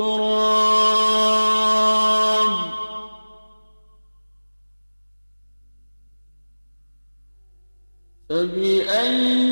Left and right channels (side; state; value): both; inverted; correlation -1.00